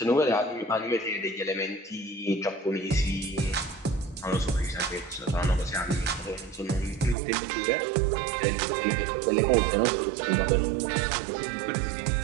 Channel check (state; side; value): drops out; left; at 7.2 s